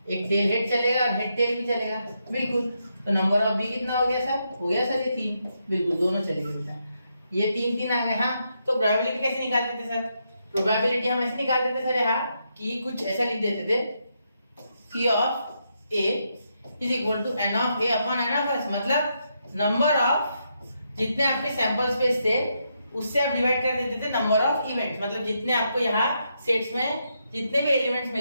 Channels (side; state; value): both; inverted; correlation -0.80